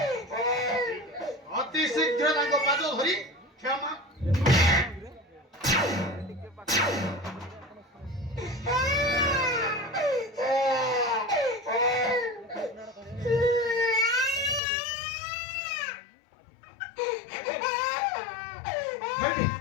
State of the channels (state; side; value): drops out; right; at 14.6 s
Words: ଅତି ଶୀଘ୍ର ତାଙ୍କ ପାଦ ଧରି କ୍ଷମା। ହେଠି